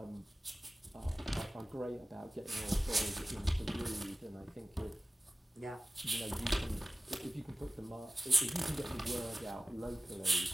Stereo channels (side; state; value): both; normal; correlation 0.96